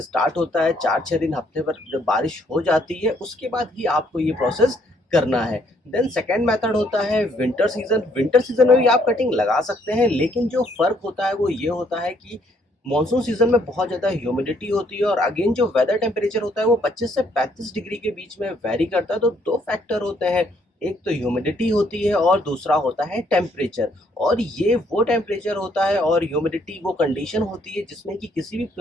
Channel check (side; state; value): both; normal; correlation 0.68